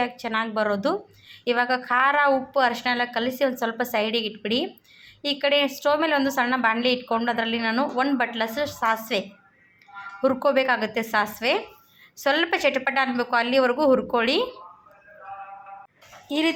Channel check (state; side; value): identical; both; correlation 1.00